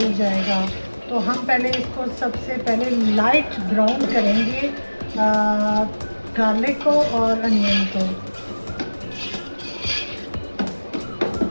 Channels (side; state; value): both; inverted; correlation -1.00